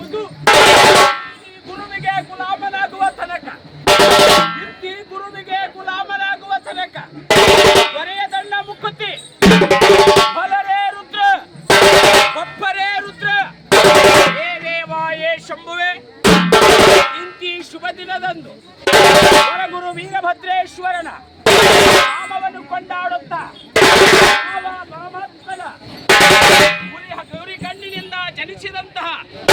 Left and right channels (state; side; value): identical; both; correlation 1.00